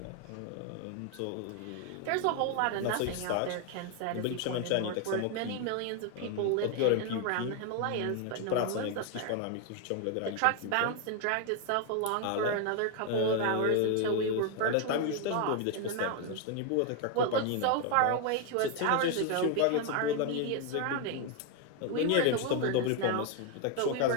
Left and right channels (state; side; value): different; both; correlation 0.01